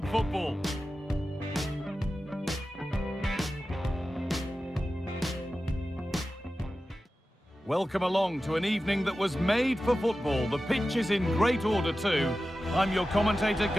football. Welcome along to an evening that was made for football. The pitch is in great order too. I'm your commentator,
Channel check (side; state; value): both; normal; correlation 0.94